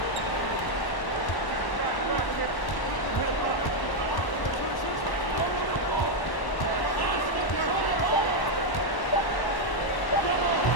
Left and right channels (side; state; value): right; late; 1.1 ms